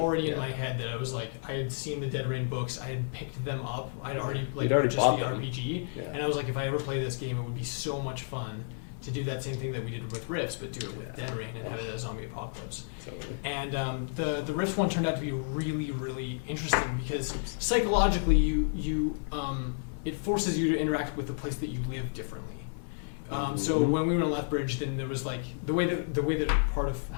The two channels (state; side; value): silent; right; 57 dB below the other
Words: in Yeah. my head that I was like, I had seen the Dead Rain books, I had picked them up, I'd already like You'd already purchased bought the them. RPG, Yeah. and I was like, if I ever play this game, it would be so much fun to do that same thing that we did with Rifts, but do it with Dead Rain and have it as a zombie apocalypse. Totally. And the Rifts one turned out to be really, really interesting because psychologically, it forces you to interact with the place that you live differently. So when we were in Lethbridge, then there was like the way that part of